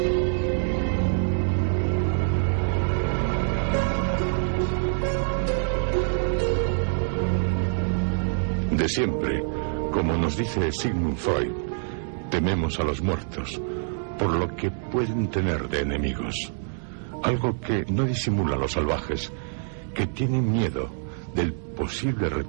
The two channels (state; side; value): silent; left; digital silence